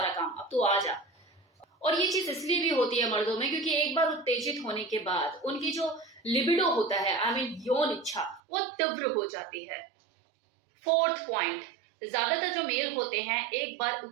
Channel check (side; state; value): left; drops out; at 8.4 s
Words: काम, अब तू आ जा। और ये चीज इसलिए भी होती है मर्दों में क्योंकि एक बार उत्तेजित होने के बाद उनकी जो लिबिडो होता है, आई मीन यौन इच्छा, वो तीव्र हो जाती है। 4th पॉइंट, ज्यादातर जो मेल होते हैं एक बार